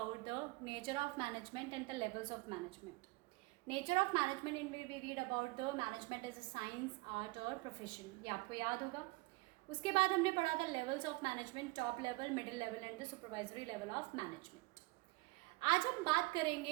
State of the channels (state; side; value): quieter; left; 23.7 dB